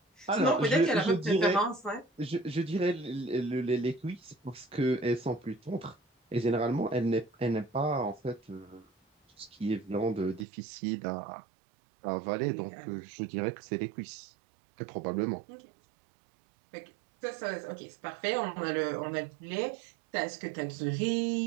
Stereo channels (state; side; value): drops out; left; at 10.5 s